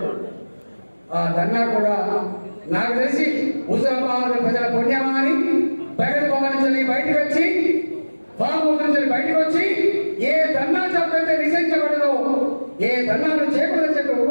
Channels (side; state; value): both; inverted; correlation -1.00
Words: ఆ ధర్నా కూడా నాకు తెలిసి హుజరాబాద్ ప్రజల పుణ్యమా అని ప్రగతి భవన్ నుంచి బయటకు వచ్చి, ఫామ్ హౌస్ నుంచి బయటకు వచ్చి ఏ ధర్నా చౌకైతే నిషేధించబడదో, ఏ ధర్నాలు చేయకూడదని చెప్పి